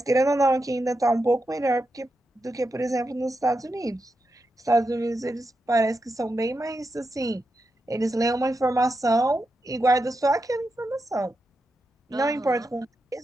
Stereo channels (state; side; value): normal; both; correlation 0.87